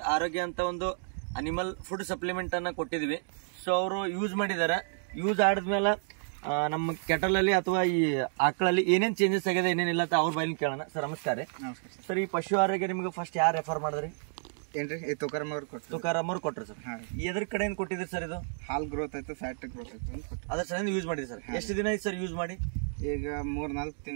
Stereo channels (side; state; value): left; silent; digital silence